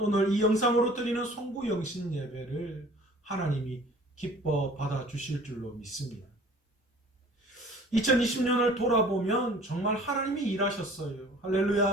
오늘 이 영상으로 드리는 송구영신 예배를 하나님이 기뻐 받아주실 줄로 믿습니다. 2020년을 돌아보면 정말 하나님이 일하셨어요.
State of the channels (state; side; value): normal; both; correlation 0.49